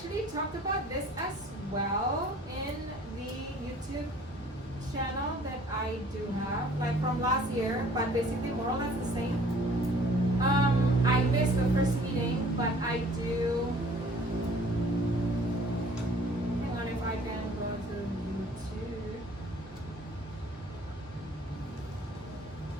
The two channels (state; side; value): normal; both; correlation 0.53